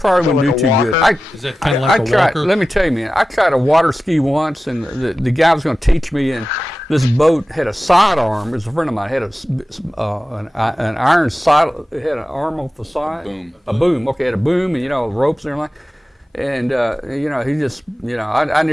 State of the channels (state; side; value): normal; both; correlation 0.94